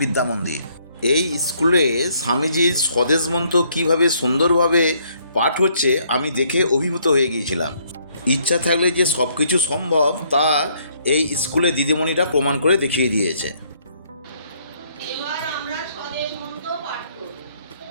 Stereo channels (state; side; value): inverted; both; correlation -0.67